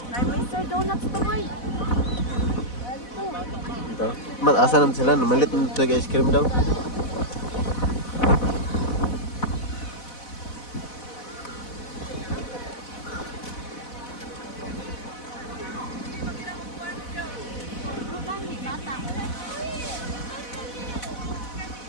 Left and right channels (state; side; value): late; right; 4.1 ms